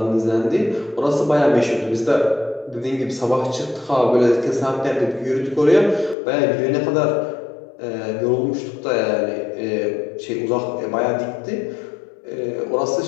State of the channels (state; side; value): drops out; right; at 6.2 s